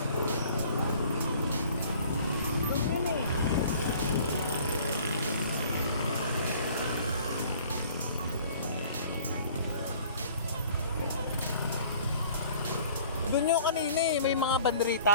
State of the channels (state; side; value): inverted; both; correlation -0.51